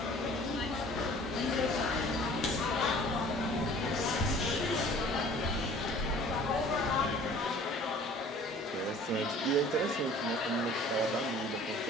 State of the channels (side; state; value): both; normal; correlation 0.49